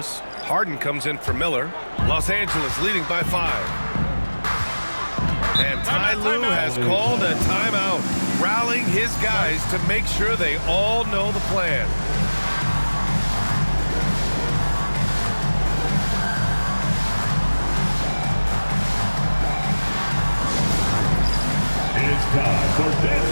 Harden comes in for Miller. Los Angeles leading by 5. And Ty Lue has called a timeout, rallying his guys to make sure they all know the plan. It's time for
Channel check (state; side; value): inverted; both; correlation -1.00